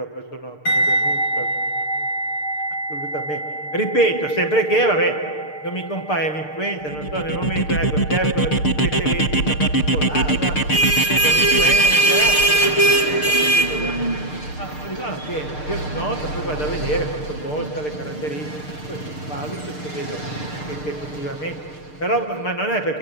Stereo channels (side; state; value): right; late; 6.7 ms